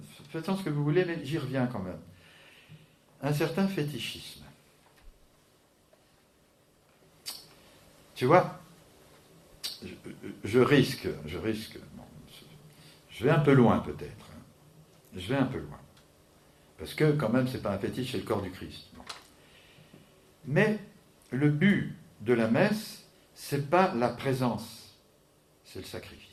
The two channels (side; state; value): both; identical; correlation 1.00